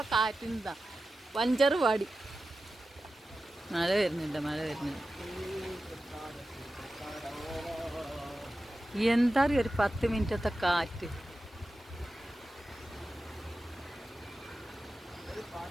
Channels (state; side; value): normal; both; correlation 0.93